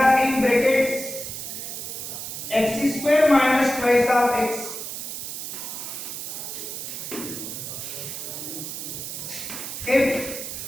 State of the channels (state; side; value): noise; right; hiss, 7 dB below the sound